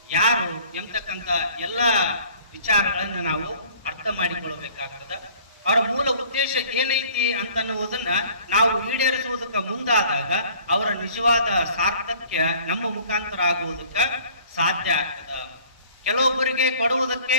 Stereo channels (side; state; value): both; inverted; correlation -0.52